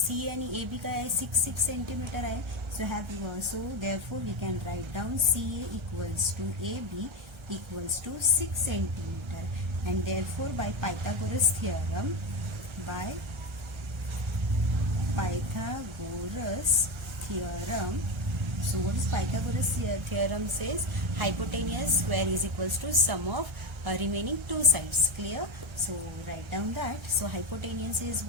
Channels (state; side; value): late; left; 1.3 ms